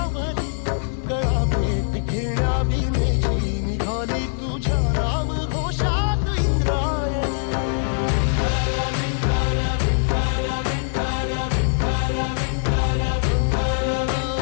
गळा भेट घेण्या भीमेची निघाली तुझ्या राम घोषात इंद्रायणी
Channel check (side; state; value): right; silent; digital silence